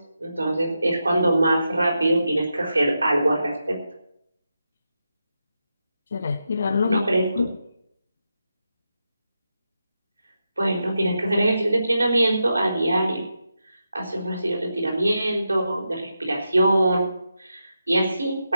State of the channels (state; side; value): inverted; both; correlation -0.87